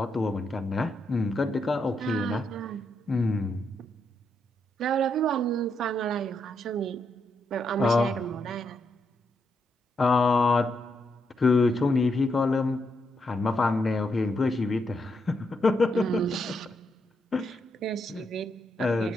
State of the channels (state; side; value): normal; both; correlation 0.80